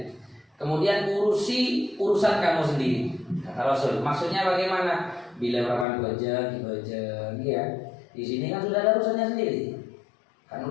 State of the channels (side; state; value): right; drops out; at 5.9 s